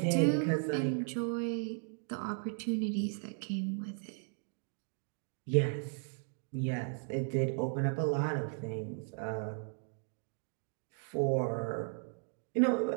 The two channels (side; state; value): left; silent; 54 dB below the other